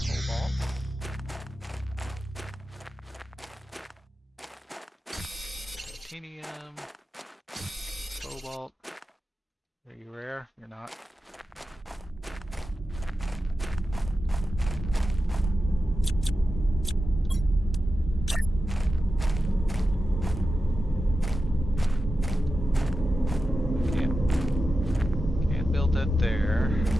Titanium, cobalt. Are you rare? You're not. Can't build that there.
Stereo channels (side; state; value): both; normal; correlation 0.92